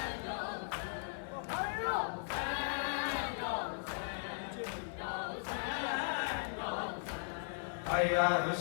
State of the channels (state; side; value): silent; right; 53 dB below the other